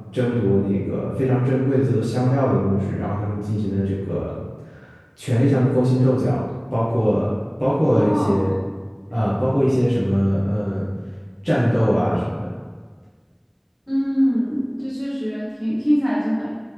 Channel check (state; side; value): identical; both; correlation 1.00